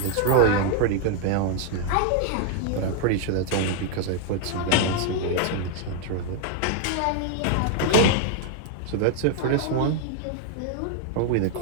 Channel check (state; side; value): different; both; correlation 0.00